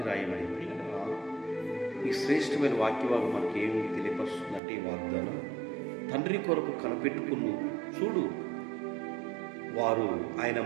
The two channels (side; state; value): left; drops out; at 4.6 s